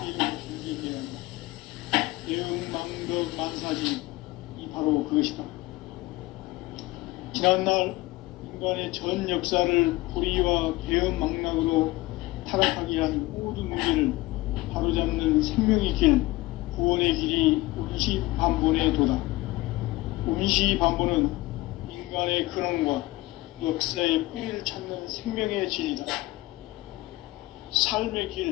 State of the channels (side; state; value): right; quieter; 19.6 dB